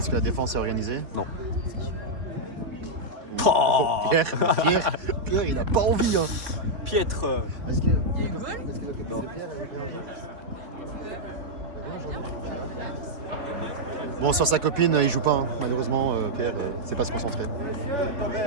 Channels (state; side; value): late; left; 4.1 ms